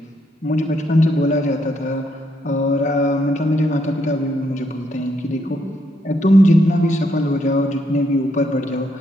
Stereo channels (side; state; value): both; normal; correlation 0.75